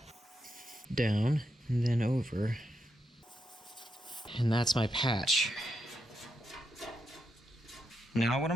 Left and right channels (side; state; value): both; normal; correlation 0.83